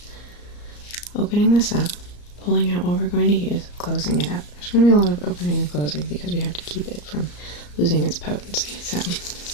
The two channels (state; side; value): late; right; 34 ms